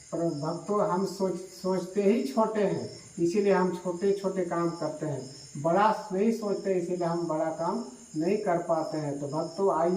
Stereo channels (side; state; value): both; identical; correlation 1.00